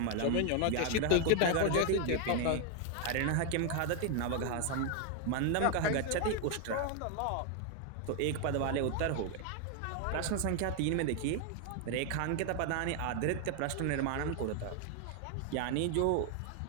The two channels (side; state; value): both; different; correlation 0.01